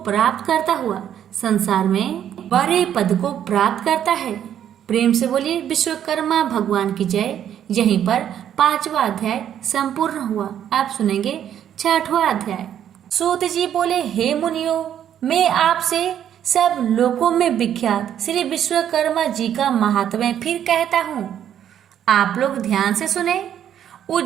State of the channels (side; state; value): left; quieter; 10.0 dB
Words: प्राप्त करता हुआ संसार में बड़े पद को प्राप्त करता है। प्रेम से बोलिए विश्वकर्मा भगवान की जय। यहीं पर 5वां अध्याय संपूर्ण हुआ। आप सुनेंगे 6वां अध्याय। सूत जी बोले, हे मुनियों, मैं आपसे सब लोकों में विख्यात श्री विश्वकर्मा जी का महात्म्य फिर कहता हूँ। आप लोग ध्यान से सुने।